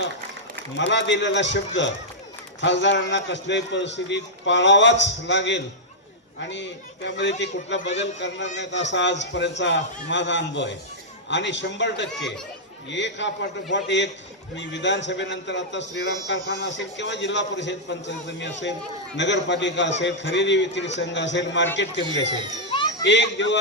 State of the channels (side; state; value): both; normal; correlation -0.07